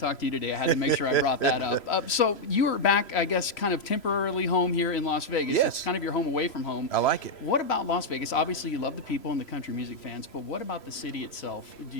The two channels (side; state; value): right; late; 3.0 ms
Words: to you today. I had to make sure I brought that up. So you were back, I guess, kind of temporarily home here in Las Vegas. Yes. It's kind of your home away from home. I like it. What about Las Vegas? Obviously, you love the people and the country music fans, but what about the city itself do